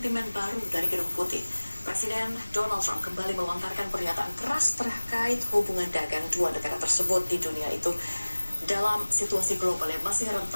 baru dari Gedung Putih. Presiden Donald Trump kembali melontarkan pernyataan keras terkait hubungan dagang dua negara tersebut di dunia itu. Dalam situasi global yang masih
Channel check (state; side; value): inverted; both; correlation -1.00